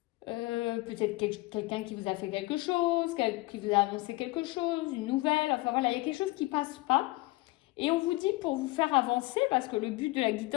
peut-être quelqu'un qui vous a fait quelque chose, qui vous a annoncé quelque chose, une nouvelle, enfin voilà, il y a quelque chose qui ne passe pas. Et on vous dit pour vous faire avancer, parce que le but de la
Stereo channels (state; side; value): quieter; right; 21.1 dB